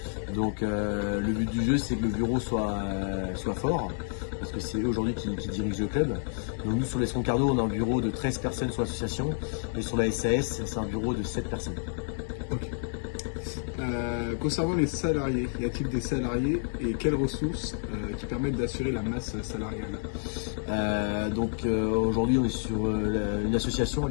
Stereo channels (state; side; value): silent; right; digital silence